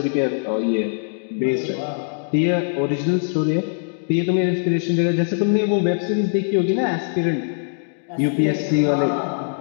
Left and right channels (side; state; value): right; silent; digital silence